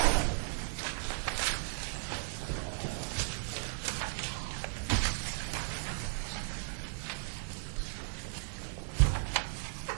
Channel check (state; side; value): silent; left; 54 dB below the other